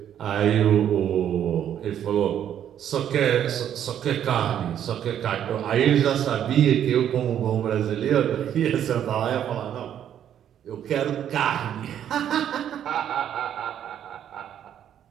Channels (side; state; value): left; quieter; 10.0 dB